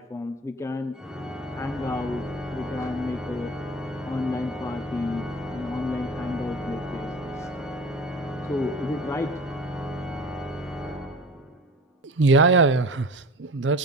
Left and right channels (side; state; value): both; normal; correlation 0.39